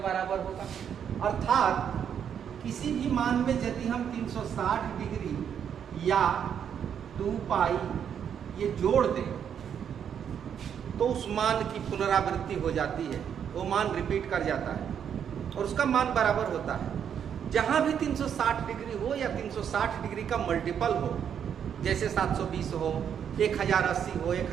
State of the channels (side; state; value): left; quieter; 8.3 dB